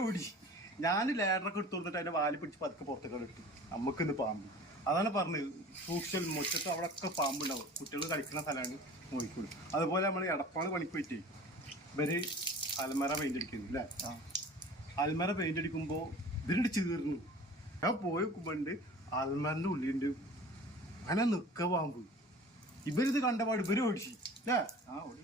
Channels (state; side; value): normal; both; correlation 0.42